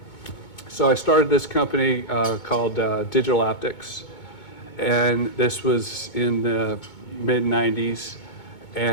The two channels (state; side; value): late; right; 2.2 ms